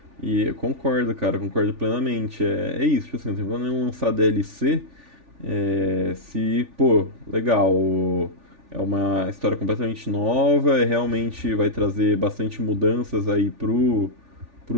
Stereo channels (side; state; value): left; late; 3.4 ms